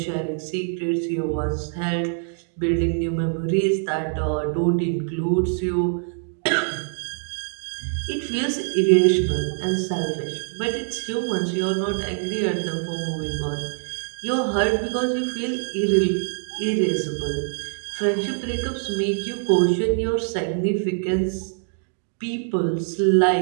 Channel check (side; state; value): left; silent; digital silence